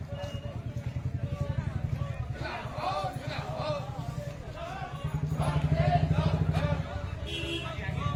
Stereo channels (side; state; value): both; identical; correlation 1.00